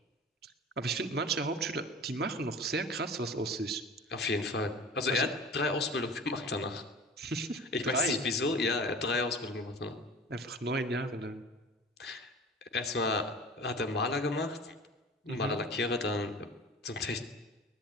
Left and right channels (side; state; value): both; normal; correlation 0.39